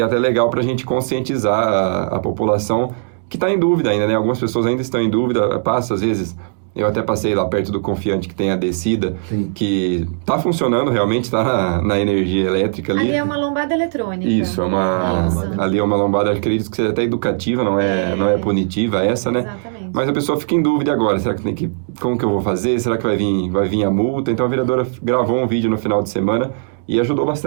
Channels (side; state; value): left; silent; digital silence